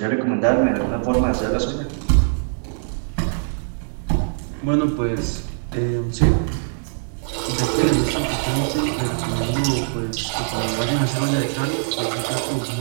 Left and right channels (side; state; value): left; silent; 64 dB below the other